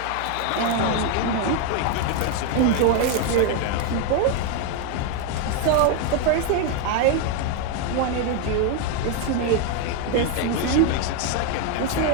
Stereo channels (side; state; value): both; different; correlation 0.01